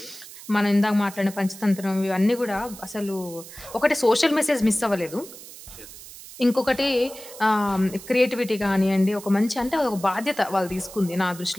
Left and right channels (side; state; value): right; noise; hiss, 16 dB below the sound